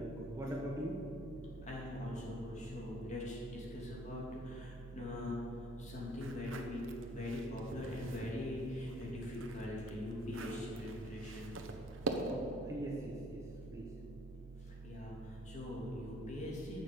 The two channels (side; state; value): both; normal; correlation 0.59